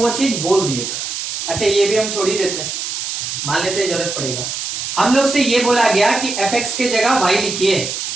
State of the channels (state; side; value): noise; right; hiss, 4 dB below the sound